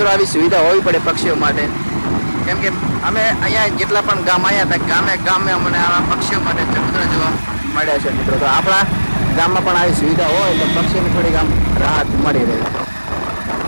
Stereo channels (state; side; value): inverted; both; correlation -1.00